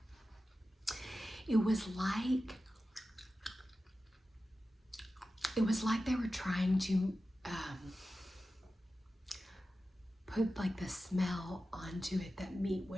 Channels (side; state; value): both; normal; correlation 0.93